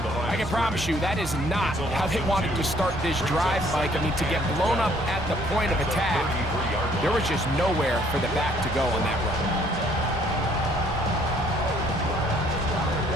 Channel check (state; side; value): normal; both; correlation 0.62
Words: I can promise you that is not how they wanted to start this drive, Mike. I mean, to get blown up at the point of attack, there was just nowhere for the back to go on that run.